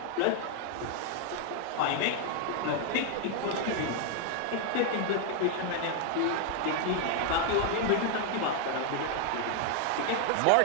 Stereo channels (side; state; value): both; different; correlation 0.00